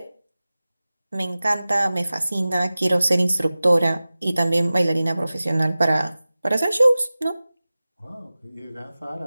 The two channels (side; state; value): both; inverted; correlation -0.97